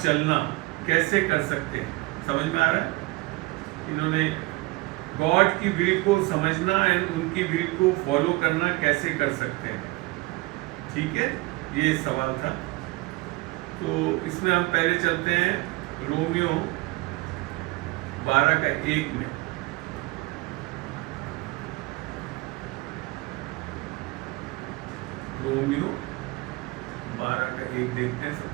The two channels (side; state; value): left; quieter; 22.1 dB